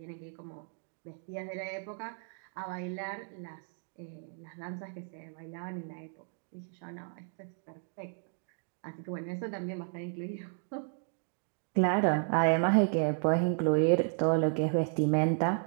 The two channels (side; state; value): left; silent; 55 dB below the other